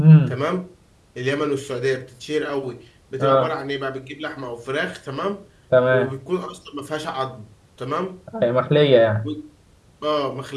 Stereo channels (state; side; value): identical; both; correlation 1.00